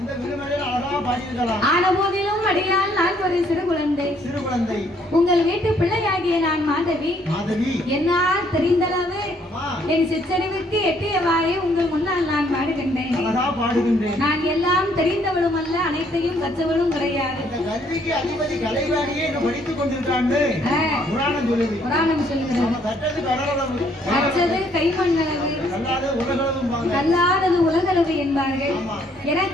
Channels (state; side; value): normal; both; correlation 0.66